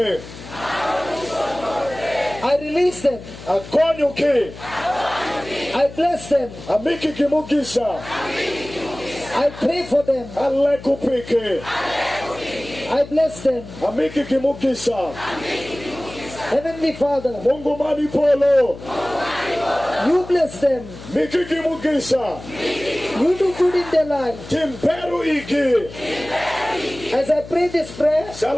I release them. Akonyo ke. I bless them. Amiki kimugisa. I pray for them. Ale kupike. I bless them. Amiki kimugisa. Heavenly Father, Mungu mani polo. you bless them. Miki kimugisa. You do good in their life. Timperu iki. As I pray this prayer,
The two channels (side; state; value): left; noise; hum, 15 dB below the sound